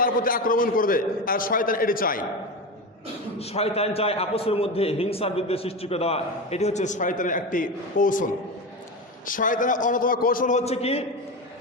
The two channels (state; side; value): normal; both; correlation 0.21